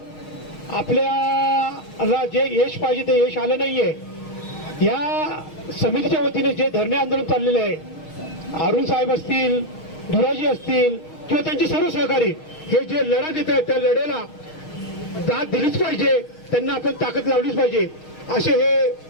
आपल्याला जे यश पाहिजे ते यश आलं नाहीये. या समितीच्या वतीने जे धरणे आंदोलन चाललेले आहे, अरुण साहेब असतील, धुराजी असतील किंवा त्यांचे सर्व सहकारी, हे जे लढा देत आहेत त्या लढ्याला दाद दिलीच पाहिजे, त्यांना आपण ताकद लावलीच पाहिजे. असे हे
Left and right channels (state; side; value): late; right; 6.4 ms